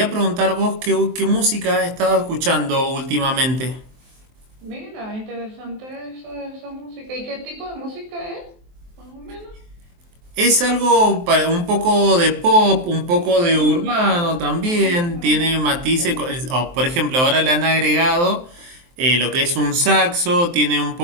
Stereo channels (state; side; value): late; left; 23 ms